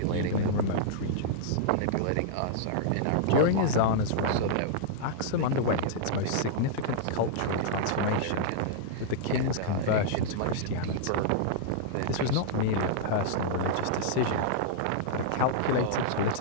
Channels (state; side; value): different; both; correlation -0.02